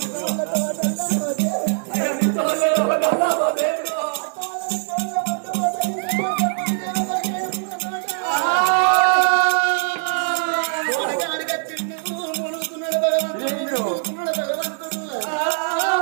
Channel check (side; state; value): left; silent; digital silence